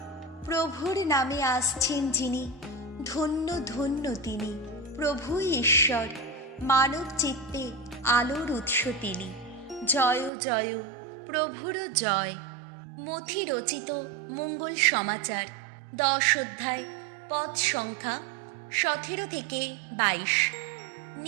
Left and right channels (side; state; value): left; drops out; at 10.3 s